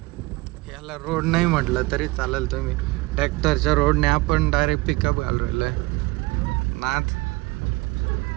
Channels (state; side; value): quieter; left; 22.4 dB